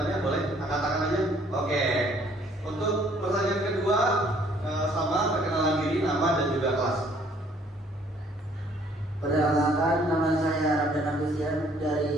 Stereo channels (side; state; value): both; normal; correlation 0.61